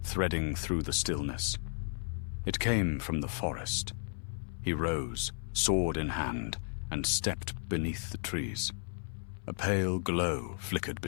threading through the stillness. It came from the forest. He rose, sword in hand, and stepped beneath the trees. A pale glow flickered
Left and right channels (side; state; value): right; silent; 55 dB below the other